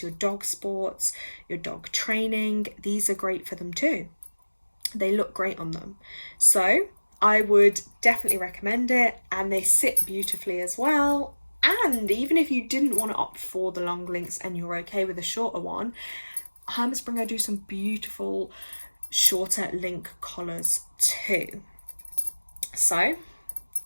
your dog sports, your dog training, these are great for them too. They look great on them. So I would definitely recommend it, and they sit beautifully as well. And even if you didn't want to opt for the long links and you're okay with a shorter one, Herm Sprenger do some beautiful shorter link collars too. So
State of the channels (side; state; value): both; inverted; correlation -1.00